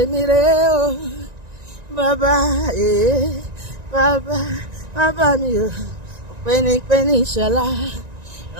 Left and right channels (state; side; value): late; left; 1.9 ms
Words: rè o bàbá bàbá mi o pẹ́ni ìṣọ̀lá